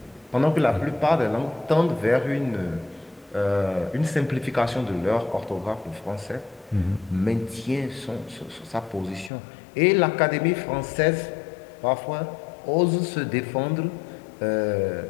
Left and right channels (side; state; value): right; drops out; at 9.3 s